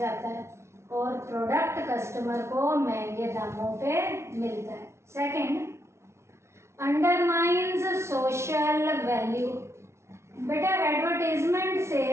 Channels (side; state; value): left; late; 0.13 ms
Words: है और प्रोडक्ट कस्टमर को महंगे दामों पे मिलता है। Second, undermines social value. बेटा एडवर्टीजमेंट से